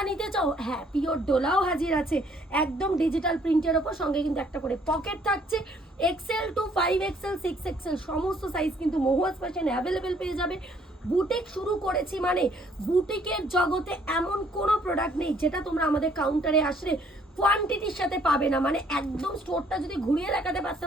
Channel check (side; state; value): both; normal; correlation 0.63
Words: নিতে চাও, হ্যাঁ পিওর ডোলাও হাজির আছে, একদম ডিজিটাল প্রিন্টের ওপর, সঙ্গে কিন্তু একটা করে পকেট থাকছে। এক্সেল টু 5XL 6XL সমস্ত সাইজ কিন্তু মহুয়াস ফ্যাশন অ্যাভেলেবেল পেয়ে যাবে। বুটিক শুরু করেছি মানে বুটিকের জগতে এমন কোনো প্রোডাক্ট নেই যেটা তোমরা আমাদের কাউন্টারে আসলে কোয়ান্টিটির সাথে পাবে না। মানে একদম স্টোরটা যদি ঘুরিয়ে দেখাতে